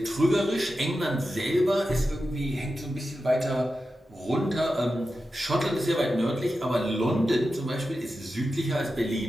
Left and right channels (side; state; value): both; normal; correlation 0.91